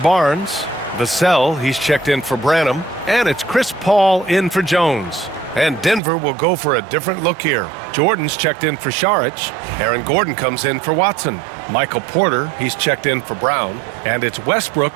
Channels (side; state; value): left; drops out; at 6.0 s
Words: Vassell, he's checked in for Branham. And it's Chris Paul in for Jones. And Denver will go for a different look here. Jordan's checked in for Saric. Aaron Gordon comes in for Watson. Michael Porter, he's checked in for Brown. And it's